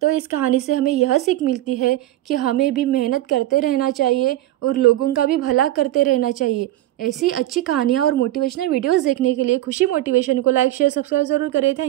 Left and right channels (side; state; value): left; quieter; 14.8 dB